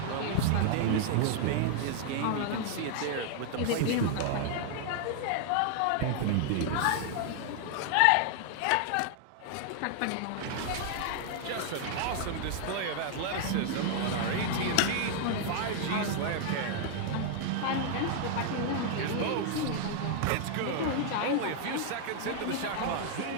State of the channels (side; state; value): both; different; correlation 0.00